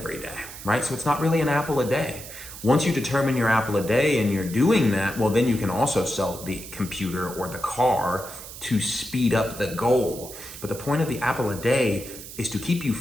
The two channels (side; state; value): right; noise; hiss, 13 dB below the sound